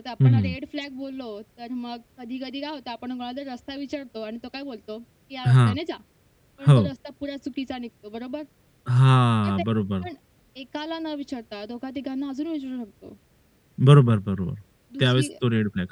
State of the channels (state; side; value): identical; both; correlation 1.00